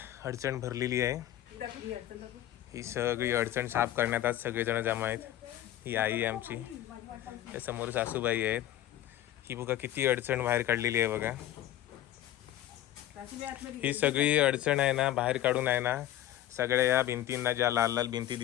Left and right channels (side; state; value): right; quieter; 13.0 dB